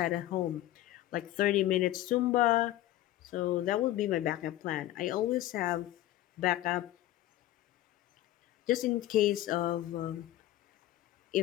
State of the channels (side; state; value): right; quieter; 14.6 dB